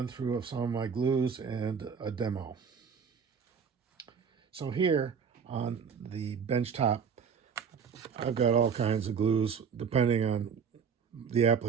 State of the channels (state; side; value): quieter; left; 6.6 dB